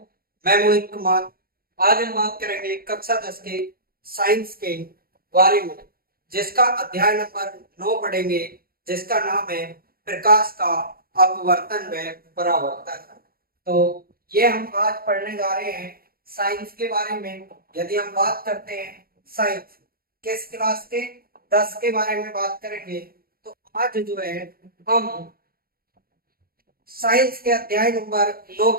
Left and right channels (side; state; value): left; late; 0.43 ms